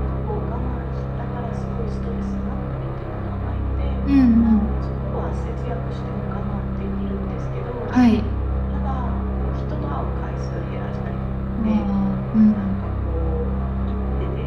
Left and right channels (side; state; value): both; identical; correlation 1.00